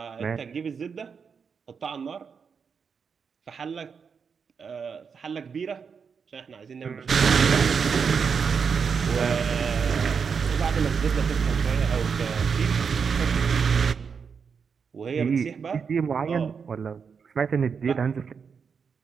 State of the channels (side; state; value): left; quieter; 6.1 dB